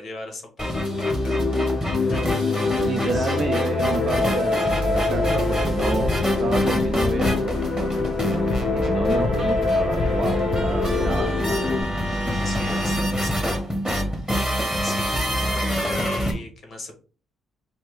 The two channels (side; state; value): both; normal; correlation 0.81